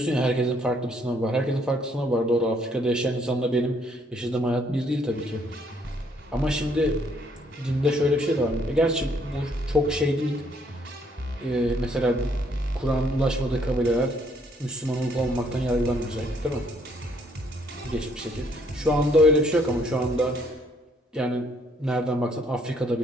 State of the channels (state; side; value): normal; both; correlation 0.67